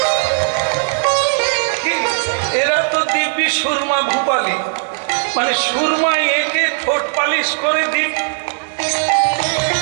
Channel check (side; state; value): left; silent; 65 dB below the other